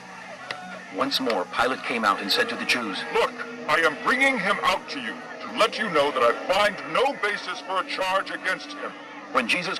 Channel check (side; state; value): both; identical; correlation 1.00